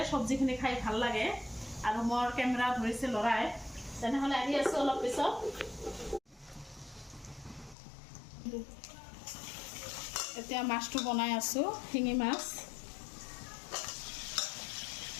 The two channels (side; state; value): right; drops out; at 7.8 s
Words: চব্জিখিনি খাই ভাল লাগে। আৰু মোৰ কেমেৰা ধৰিছে ল'ৰাই, তেনেহ'লে আহি আছোঁ অলপ পিছত। এতিয়া মাছটো বনাই আছোঁ, শিঙি মাছ।